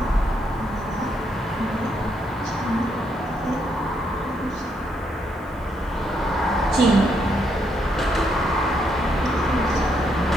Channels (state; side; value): normal; both; correlation 0.76